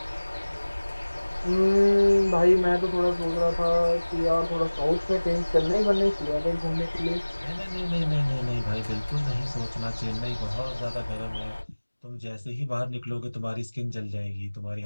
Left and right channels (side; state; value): both; inverted; correlation -1.00